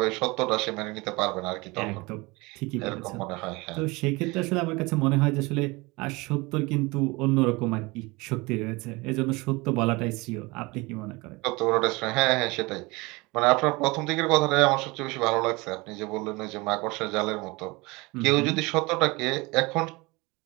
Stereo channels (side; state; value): left; quieter; 24.3 dB